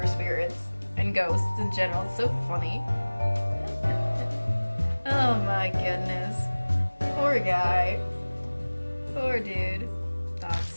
spirits and ghosts in general. It's so funny. Oh my goodness. Poor guy. Poor dude.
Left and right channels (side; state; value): both; inverted; correlation -1.00